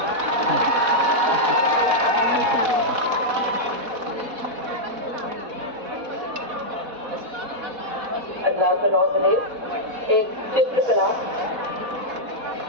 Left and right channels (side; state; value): left; late; 4.1 ms